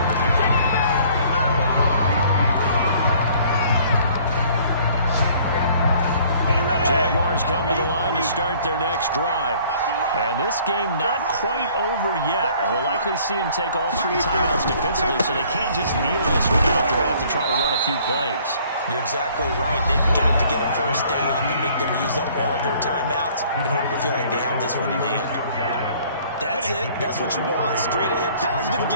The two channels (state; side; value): inverted; both; correlation -0.56